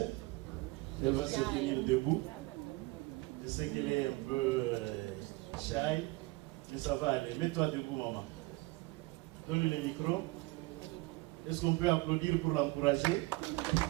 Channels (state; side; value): quieter; left; 22.8 dB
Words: Elle va se tenir debout. Je sais qu'elle est un peu shy, mais ça va aller. Mets-toi debout, maman. Donne-lui le micro. Est-ce qu'on peut applaudir pour l'encourager?